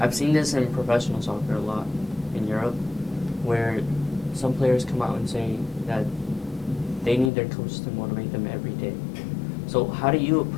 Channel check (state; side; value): drops out; right; at 7.3 s